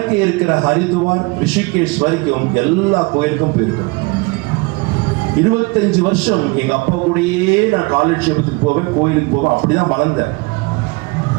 இருக்கிற ஹரித்வார், ரிஷிகேஷ் வரைக்கும் எல்லா கோயிலுக்கும் போயிருக்கிறோம். 25 வருஷம் எங்க அப்பா கூடயே நான் காலட்சேபத்துக்கு போவேன், கோயிலுக்கு போவேன், அப்படிதான் வளர்ந்தேன்.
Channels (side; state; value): left; quieter; 26.7 dB